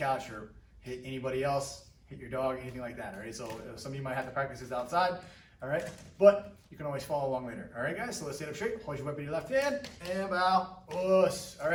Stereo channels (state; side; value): identical; both; correlation 1.00